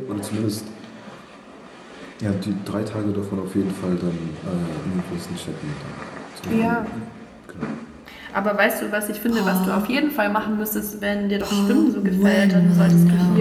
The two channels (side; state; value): both; identical; correlation 1.00